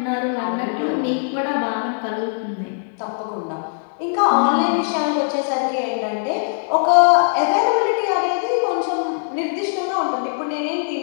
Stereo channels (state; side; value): silent; right; digital silence